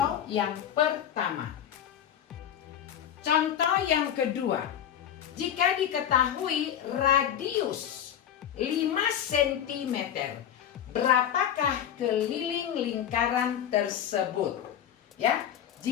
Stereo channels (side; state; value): right; quieter; 9.8 dB